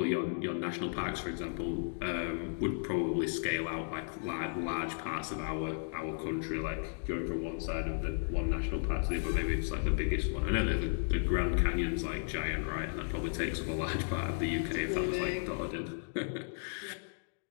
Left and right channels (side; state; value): right; silent; digital silence